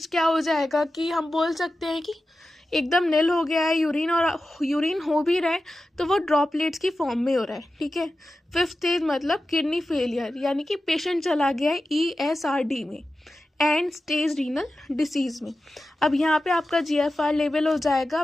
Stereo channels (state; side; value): normal; both; correlation 0.93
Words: क्या हो जाएगा कि हम बोल सकते हैं कि एकदम नील हो गया है यूरिन, और यूरिन हो भी रहा है तो वो ड्रॉपलेट्स की फॉर्म में हो रहा है, ठीक है। 5th स्टेज मतलब किडनी फेलियर, यानी कि पेशेंट चला गया है ESRD में, एंड स्टेज रीनल डिसीज में। अब यहाँ पे आपका जीएफआर लेवल हो जाएगा